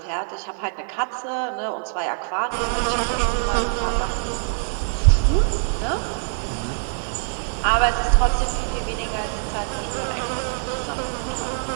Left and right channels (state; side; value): silent; left; 63 dB below the other